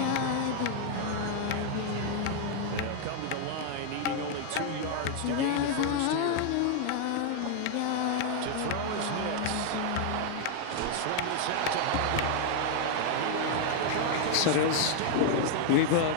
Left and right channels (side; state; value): both; different; correlation 0.00